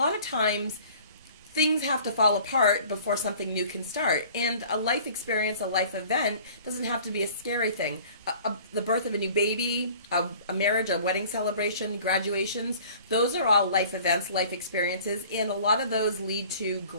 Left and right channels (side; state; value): both; inverted; correlation -0.48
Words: of times things have to fall apart before something new can start. And a life experience, a life event, doesn't have to be a scary thing. The birth of a new baby, a marriage, a wedding celebration, graduations, those are all life events, life experiences, and a lot of those lead to